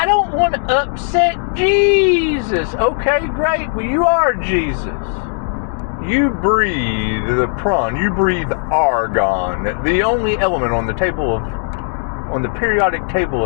don't want to upset Jesus. Okay, great. Well, you are Jesus. You breathe the prawn. You breathe argon. The only element on the periodic table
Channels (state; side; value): silent; right; 56 dB below the other